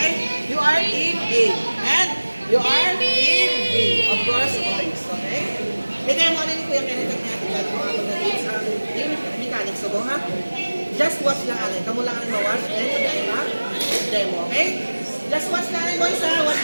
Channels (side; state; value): both; inverted; correlation -1.00